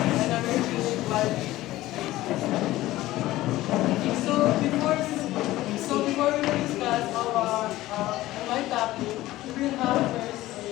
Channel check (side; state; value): right; quieter; 16.5 dB